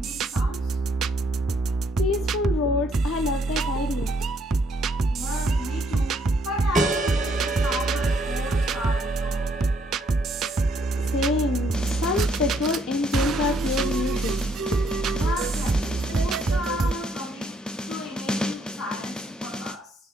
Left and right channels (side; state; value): both; normal; correlation 0.70